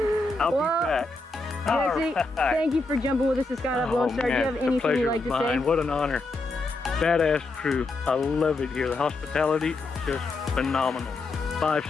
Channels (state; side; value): quieter; right; 3.3 dB